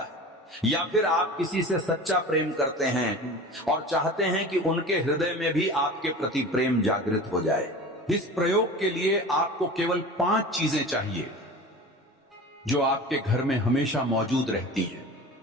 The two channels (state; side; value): normal; both; correlation 0.35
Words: है। या फिर आप किसी से सच्चा प्रेम करते हैं और चाहते हैं कि उनके हृदय में भी आपके प्रति प्रेम जागृत हो जाए। इस प्रयोग के लिए आपको केवल 5 चीजें चाहिए जो आपके घर में हमेशा मौजूद रहती हैं।